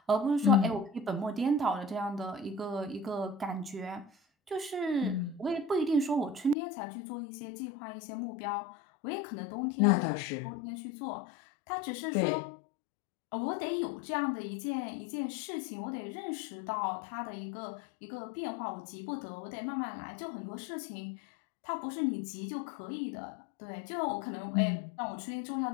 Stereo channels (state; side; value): drops out; right; at 6.6 s